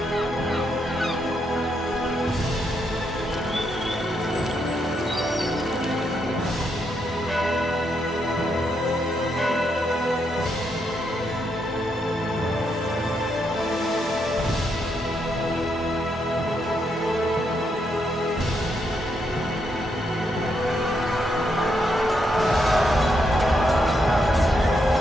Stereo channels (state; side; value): normal; both; correlation 0.79